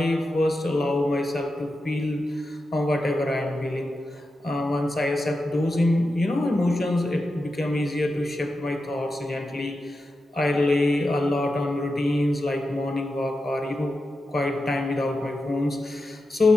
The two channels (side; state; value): both; normal; correlation 0.90